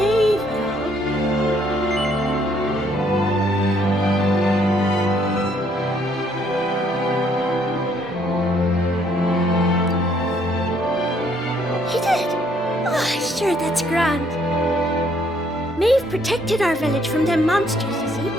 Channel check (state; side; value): normal; both; correlation 0.67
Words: at all? You did? Oh, sure, that's grand. Maeve protected our village from them monsters, you see,